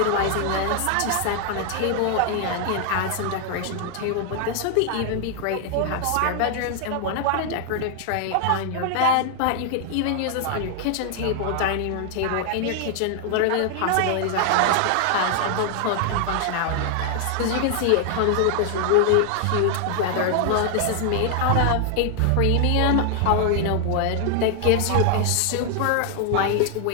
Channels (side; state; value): both; different; correlation 0.00